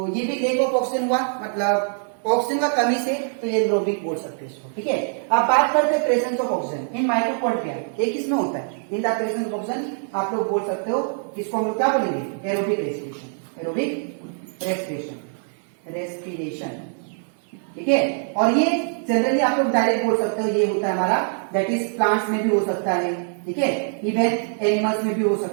ये भी लेक ऑफ ऑक्सीजन हुआ, मतलब ऑक्सीजन का कमी से, तो ये एरोबिक बोल सकते हैं इसको, ठीक है। अब बात करते हैं presence of oxygen in mitochondria, एक इसमें होता है, in the presence of oxygen आप लोग बोल सकते हो, इसको हम लोग क्या बोलेंगे, एरोबिक रेस्पिरेशन, एरोबिक रेस्पिरेशन, ठीक है। और ये जनरली आप लोग डायरेक्ट बोल सकते हो, ये होता है हमारा, दैट इज प्लांट्स में भी हो सकता है, ठीक है, इवन एनिमल्स में भी हो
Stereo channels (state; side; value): silent; left; 63 dB below the other